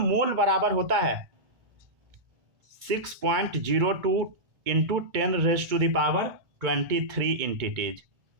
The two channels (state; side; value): late; left; 2.2 ms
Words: बराबर होता है 6.02 इंटू 10⁻23 इंटिटीज।